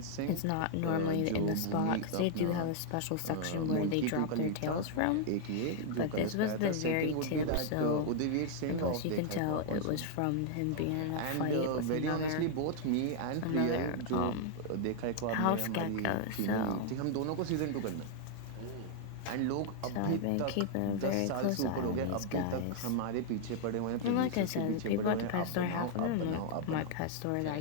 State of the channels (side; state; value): both; different; correlation 0.00